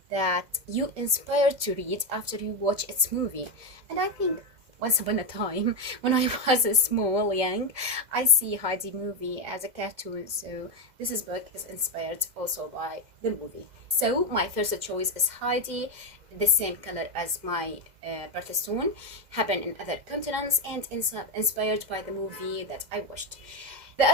that you inspired to read after you watch its movie. And I think once upon a time, when I was young, I see Heidi movie as a cartoon, so this book is inspired also by the movie. So my first choice is Heidi, the same color as my birthstone, happened in other continents, and inspired by the movie that I watched. The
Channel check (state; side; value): late; left; 2.0 ms